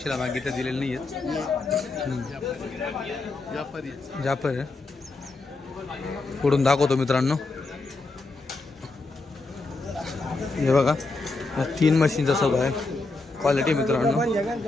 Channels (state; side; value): quieter; right; 3.4 dB